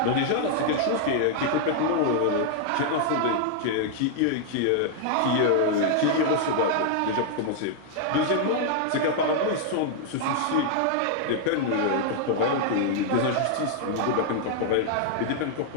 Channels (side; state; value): both; different; correlation 0.00